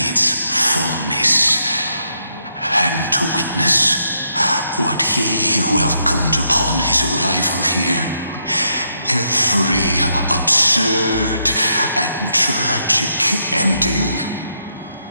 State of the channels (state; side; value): inverted; both; correlation -0.78